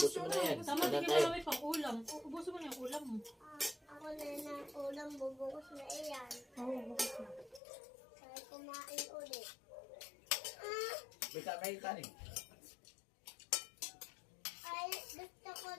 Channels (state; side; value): drops out; right; at 7.6 s